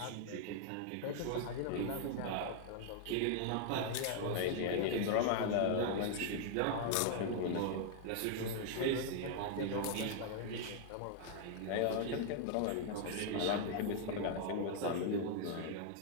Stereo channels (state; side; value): different; both; correlation 0.00